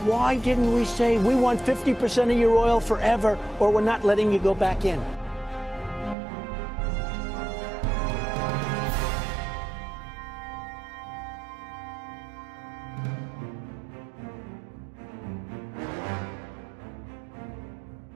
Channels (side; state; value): left; drops out; at 6.2 s